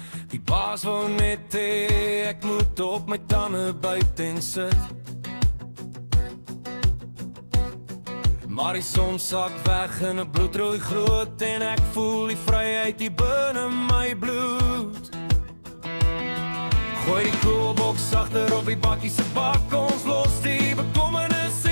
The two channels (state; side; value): inverted; both; correlation -1.00